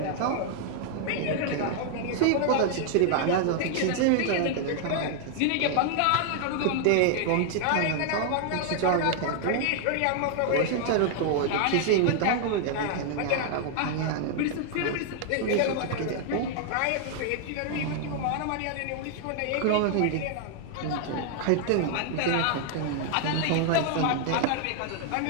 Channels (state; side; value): different; both; correlation 0.00